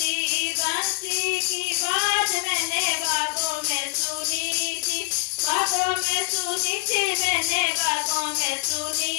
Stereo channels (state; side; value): silent; right; digital silence